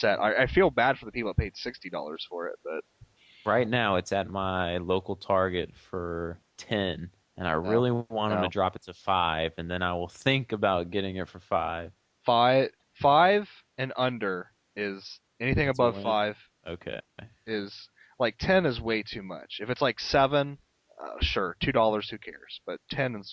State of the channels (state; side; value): identical; both; correlation 1.00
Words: I feel bad for the people that paid $60 for it, but Right now, it's at my local Target for 10, and I no, really want them to no. drop it to 5, and then I will think about getting it for 5. Five and under is anything It's a above win. five Okay. is like 10 is way too much. If it's like seven, sure, $2, who cares? But